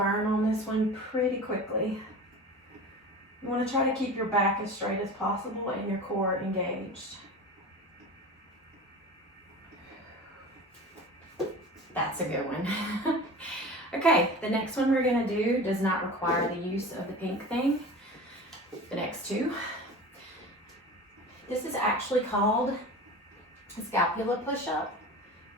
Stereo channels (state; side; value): normal; both; correlation 0.34